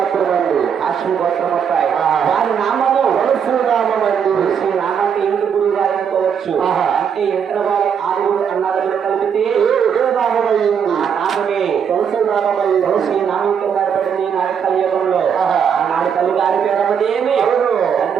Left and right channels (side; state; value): left; quieter; 7.5 dB